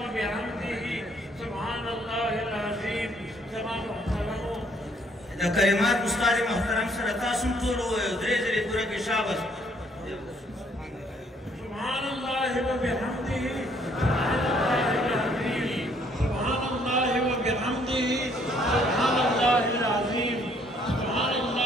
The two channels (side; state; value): both; normal; correlation 0.65